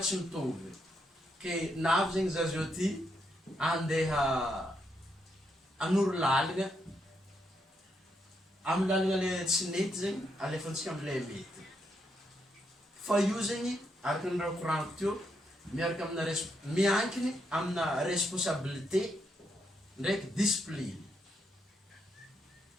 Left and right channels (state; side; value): normal; both; correlation 0.79